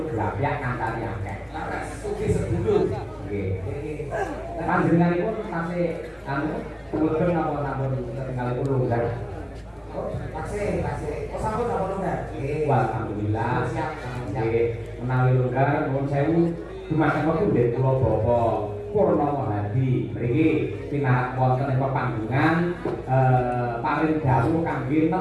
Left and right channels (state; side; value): identical; both; correlation 1.00